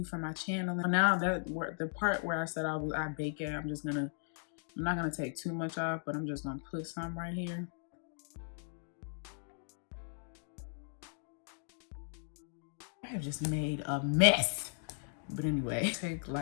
for my channel. Now that the part where I said I bake it, I'm not gonna take too much off, but I'm just gonna put some right here. I have just made a mess. But anyway, take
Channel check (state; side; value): silent; right; digital silence